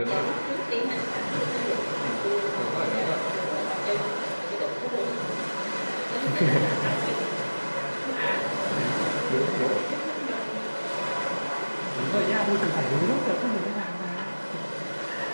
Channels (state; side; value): inverted; both; correlation -1.00